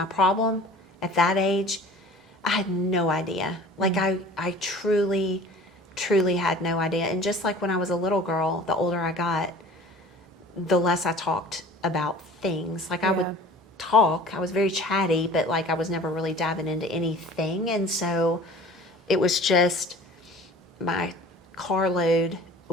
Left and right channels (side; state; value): both; normal; correlation 0.44